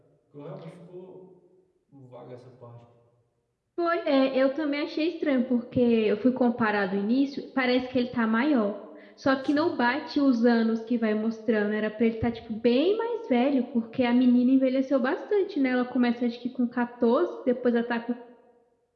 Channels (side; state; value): both; identical; correlation 1.00